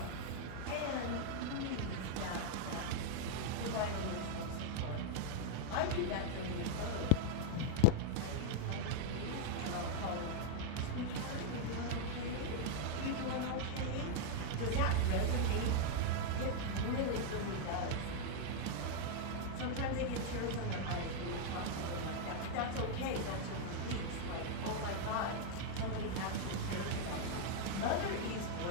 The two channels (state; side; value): different; both; correlation 0.00